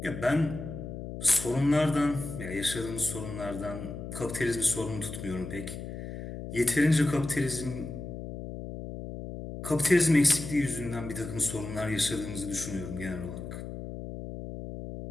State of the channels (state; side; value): noise; left; hum, 9 dB below the sound